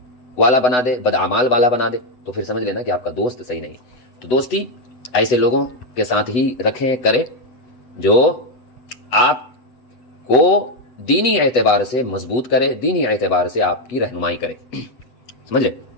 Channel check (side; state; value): right; late; 8.2 ms